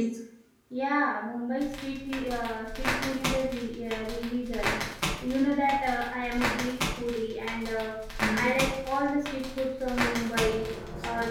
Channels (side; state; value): both; identical; correlation 1.00